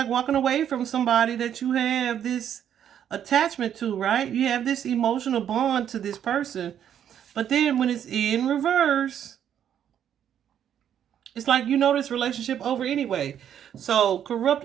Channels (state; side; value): quieter; left; 9.6 dB